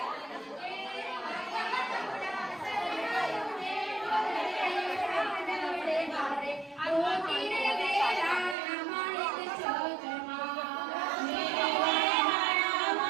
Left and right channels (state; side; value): drops out; left; at 8.6 s